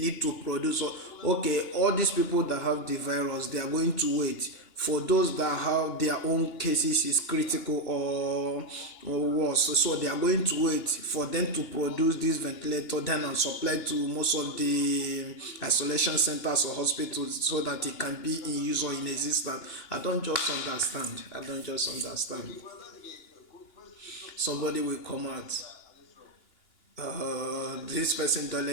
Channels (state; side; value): late; right; 2.9 ms